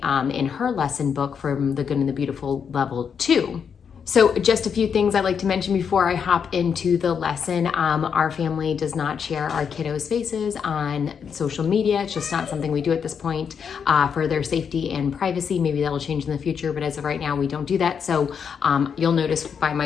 in her lesson book from the Good and the Beautiful level 2. So just a few things I'd like to mention before I hop into the lesson. Our family does not share our kiddos' faces on social media. It's just not something we do at this point for their safety and privacy. Maybe that'll change in the future, but as of right now, we don't do that. So you'll notice by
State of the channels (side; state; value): right; quieter; 6.9 dB